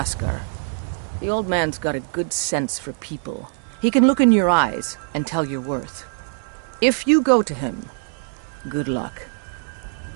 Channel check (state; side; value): silent; left; digital silence